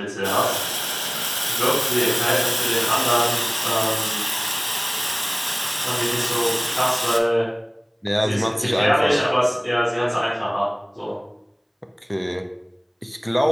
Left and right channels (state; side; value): identical; both; correlation 1.00